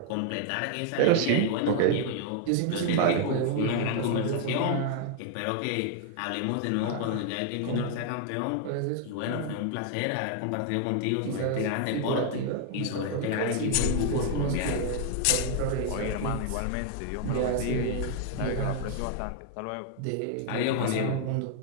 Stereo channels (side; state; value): both; different; correlation 0.00